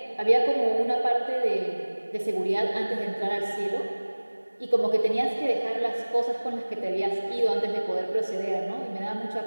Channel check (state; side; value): inverted; both; correlation -1.00